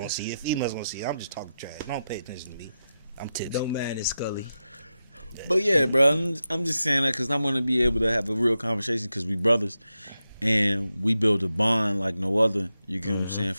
see it. Females gonna see it. I'm just talking trash. Don't pay attention to me. I'm tipsy. Don't mind it, Scully. But yeah, bro, I'm just saying that because I want to be able to have a real conversation because we brothers and we build a bond like no other. You get what I'm saying,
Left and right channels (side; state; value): both; inverted; correlation -0.90